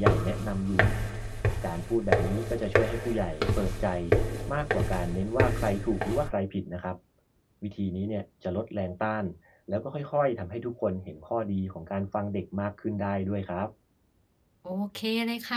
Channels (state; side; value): identical; both; correlation 1.00